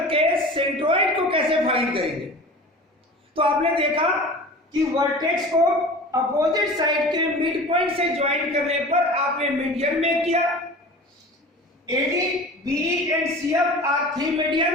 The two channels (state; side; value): normal; both; correlation 0.38